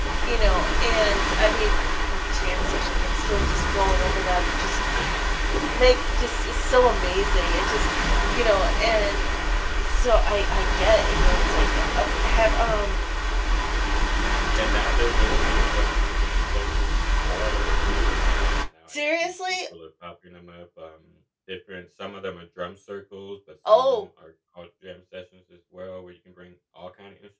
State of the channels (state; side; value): identical; both; correlation 1.00